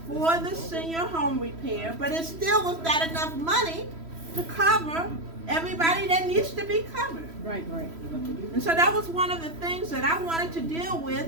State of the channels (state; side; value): late; left; 3.0 ms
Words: for the senior home repair, but it still was not enough money to cover everybody that needs to be covered. Right. And so that was one of the things that I wanted to deal